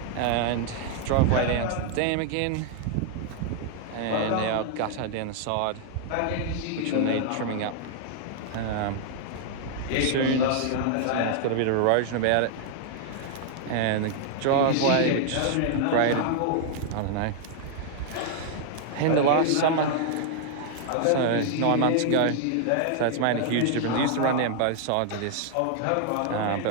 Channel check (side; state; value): both; different; correlation 0.00